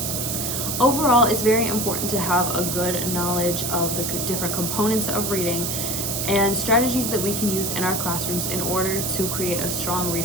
Overall, it's very important to have a good knowledge of the different components of reading and strategies that we can use in our classrooms in order to create a strong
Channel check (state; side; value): noise; right; hiss, 1 dB below the sound